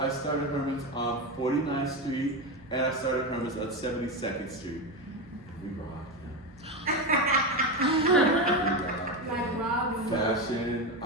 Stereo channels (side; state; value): both; normal; correlation 0.16